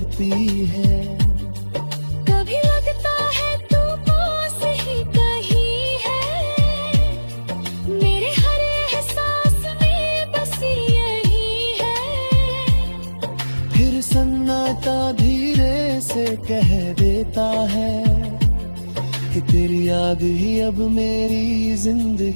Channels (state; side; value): inverted; both; correlation -1.00